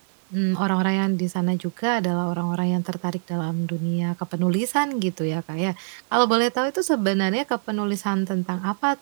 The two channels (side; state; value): left; silent; digital silence